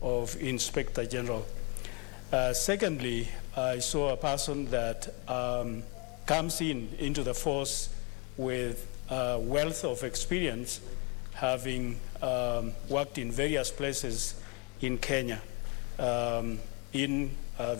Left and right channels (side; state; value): right; quieter; 32.0 dB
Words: of Inspector General. Secondly, I saw a person that comes into the force with wealth of experience, having worked in various places in Kenya in